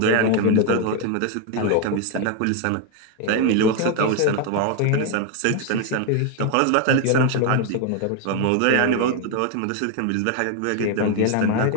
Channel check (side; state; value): both; different; correlation 0.01